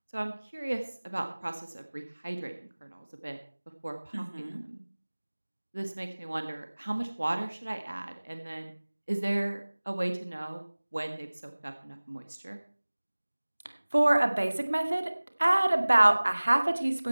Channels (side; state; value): both; inverted; correlation -1.00